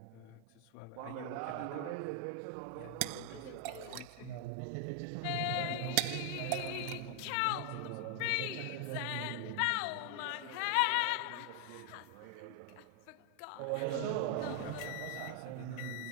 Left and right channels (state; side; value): different; both; correlation 0.00